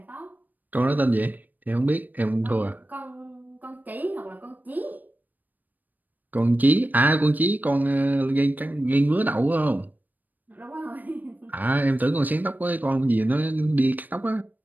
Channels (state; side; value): late; left; 0.085 ms